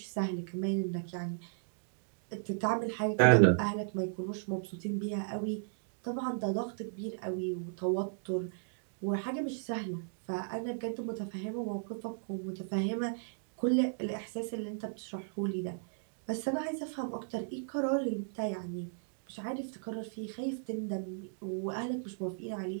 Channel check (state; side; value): silent; left; digital silence